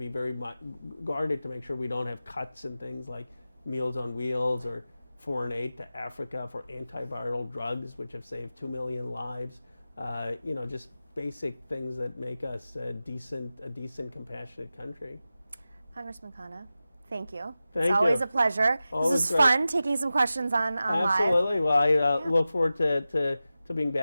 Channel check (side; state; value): both; inverted; correlation -0.94